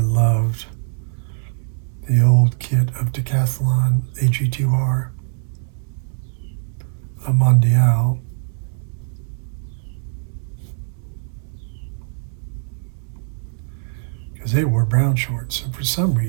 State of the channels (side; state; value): left; silent; 64 dB below the other